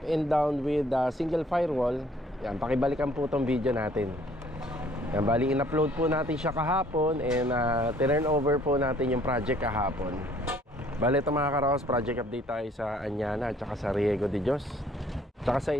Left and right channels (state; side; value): normal; both; correlation 0.60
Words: and down with single firewall, yan, pakibalikan po itong video natin. Yan, bali in-upload po natin siya kahapon and turn over po natin yung project kahapon. Bali ito mga karos, project update tayo sa Anyana at saka sa Riego de Dios, tsaka sa